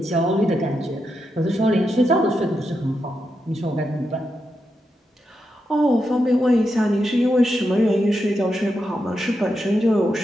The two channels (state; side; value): normal; both; correlation 0.85